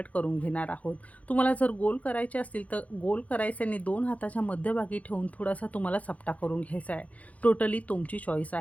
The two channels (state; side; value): late; right; 0.069 ms